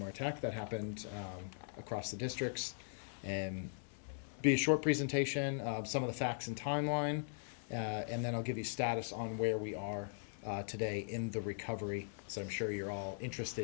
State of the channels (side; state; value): right; silent; digital silence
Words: attack that happened across the districts, and be a short presentation of some of the facts and timeline, and then I'll give you status on where we are today in the recovery, so I'm sure you're all